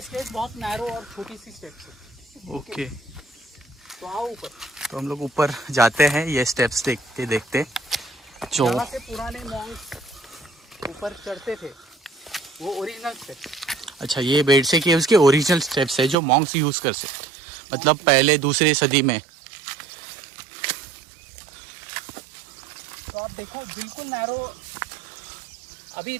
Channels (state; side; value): drops out; left; at 16.2 s